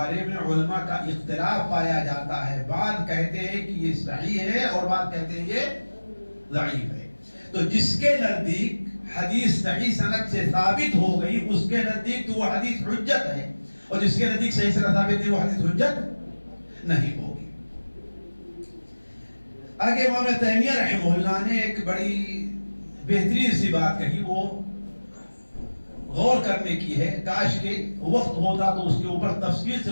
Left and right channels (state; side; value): inverted; both; correlation -1.00